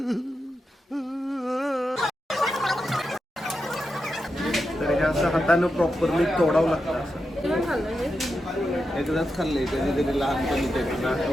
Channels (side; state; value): both; normal; correlation 0.88